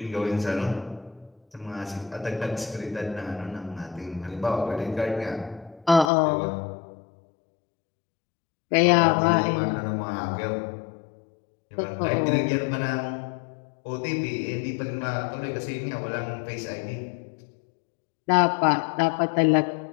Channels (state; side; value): drops out; right; at 6.1 s